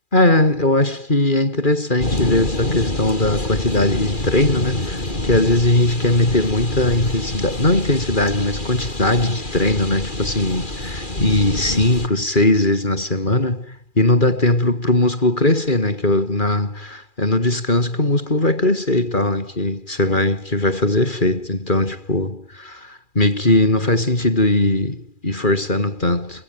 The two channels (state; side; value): late; right; 2.4 ms